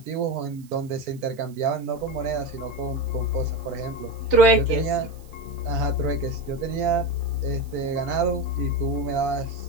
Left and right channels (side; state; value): right; noise; hiss, 27 dB below the sound